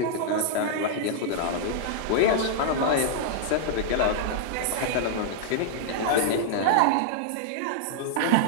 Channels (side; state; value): both; different; correlation -0.01